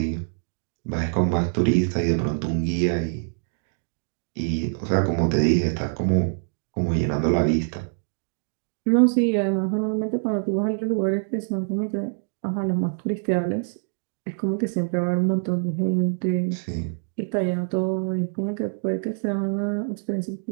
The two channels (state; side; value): silent; left; digital silence